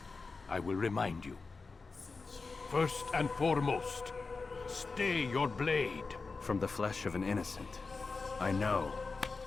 I will remind you. First and foremost, stay your blade. From the flesh of an innocent. I know.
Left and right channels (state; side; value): quieter; right; 4.2 dB